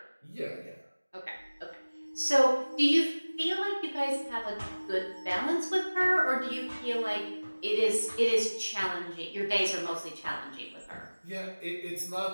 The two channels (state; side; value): inverted; both; correlation -1.00